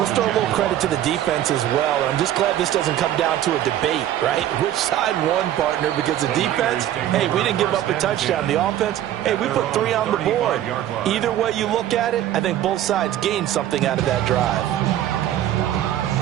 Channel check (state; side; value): quieter; left; 12.1 dB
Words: throw a little credit to the defense as well. I'm just glad this doesn't come down to a debate, right? Which side won, partner? Because the defense, hey, we didn't give up a touchdown. The offense, hey, we put 3 on the board. Either way you look at it, I think both sides gained something out of that drive.